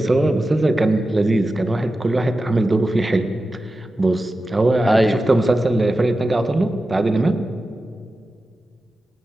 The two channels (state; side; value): normal; both; correlation 0.93